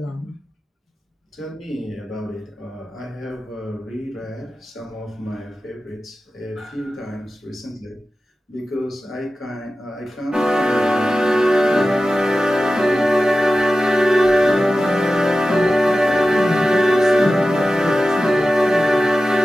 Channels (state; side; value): normal; both; correlation 0.94